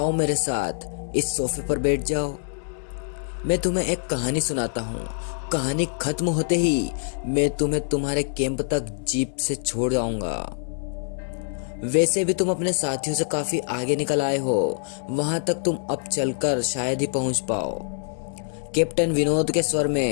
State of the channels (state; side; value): silent; right; digital silence